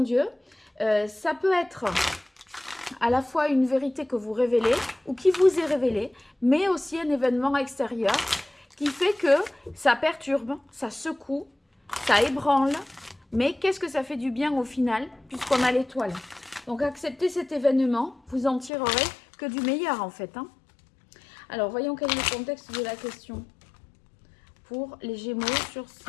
ça peut être à la fois une vérité que vous révélez ou qui vous est révélée, mais aussi un événement extérieur qui fait que ça perturbe, ça secoue, ça ébranle, mais qu'est-ce que ça fait du bien au final, puisqu'on a l'étoile. Donc acceptez cet événement, vous en tirerez que du meilleur en fait. Alors voyons quel est le contexte de la question pour les Gémeaux sur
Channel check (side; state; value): right; drops out; at 18.7 s